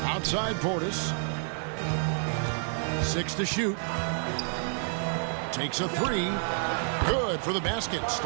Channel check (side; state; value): left; silent; 58 dB below the other